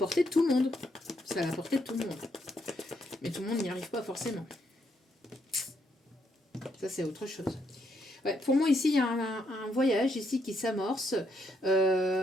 de tout le monde. C'est à la portée de tout le monde. Mais tout le monde n'y arrive pas forcément. Ça, c'est autre chose. Ouais, pour moi, ici, il y a un voyage ici qui s'amorce.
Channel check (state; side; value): normal; both; correlation 0.75